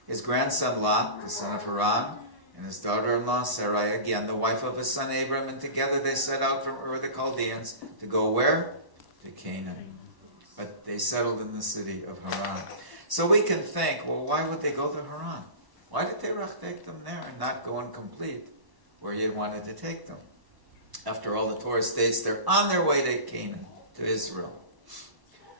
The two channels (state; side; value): late; left; 1.1 ms